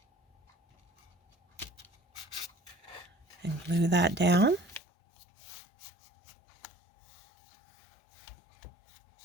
And glue that down.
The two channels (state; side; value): drops out; right; at 4.8 s